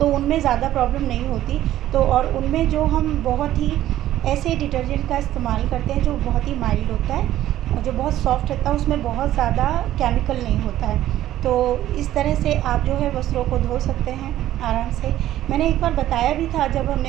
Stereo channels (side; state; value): left; quieter; 13.3 dB